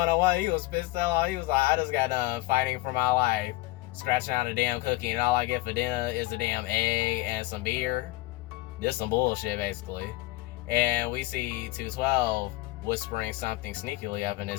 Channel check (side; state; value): right; quieter; 19.5 dB